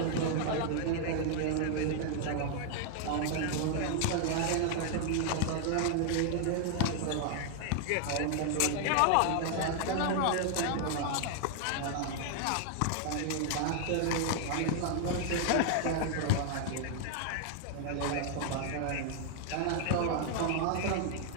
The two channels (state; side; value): different; both; correlation 0.00